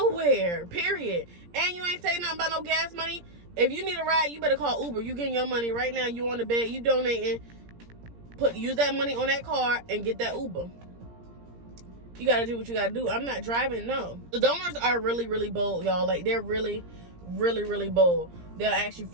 period. And you ain't saying nothing about no gas money. If you need a ride, you better call Uber. You getting your money right now. You on the bed. You donating. Use that money on that car and get that Uber. You got to do what you got to do. I'm not driving, no. The donors are really, really bold, y'all. Like, they're really, really, really bold. They'll ask you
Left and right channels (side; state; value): left; late; 17 ms